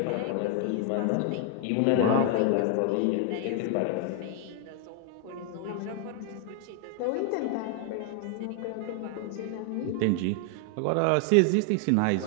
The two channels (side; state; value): both; different; correlation 0.00